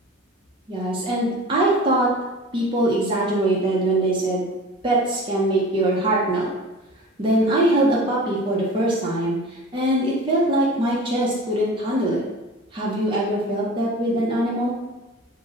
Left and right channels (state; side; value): normal; both; correlation 0.38